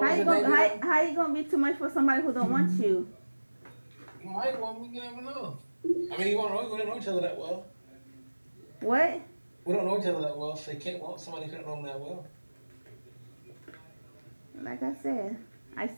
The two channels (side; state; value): both; inverted; correlation -1.00